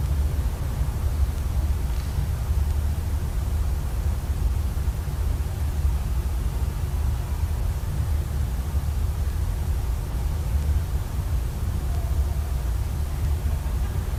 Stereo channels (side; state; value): both; identical; correlation 1.00